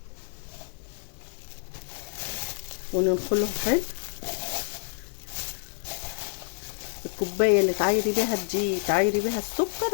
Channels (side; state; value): right; silent; digital silence